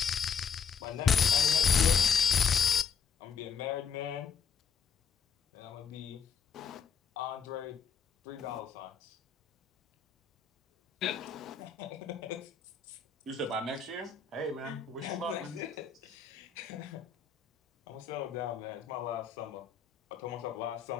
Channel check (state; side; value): quieter; right; 6.5 dB